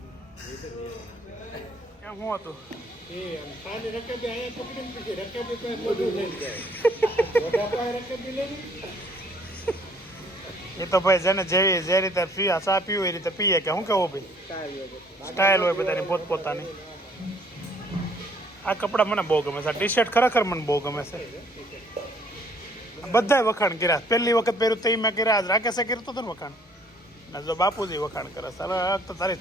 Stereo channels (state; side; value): normal; both; correlation 0.60